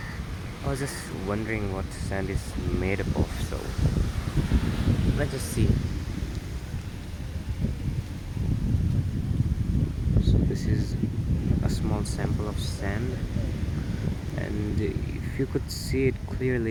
I was just wondering what sand is made up of. So let's just see. So this is a small sample of sand, and if you could see it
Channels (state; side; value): identical; both; correlation 1.00